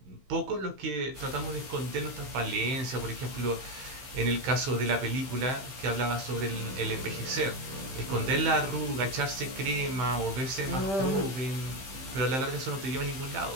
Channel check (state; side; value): late; left; 15 ms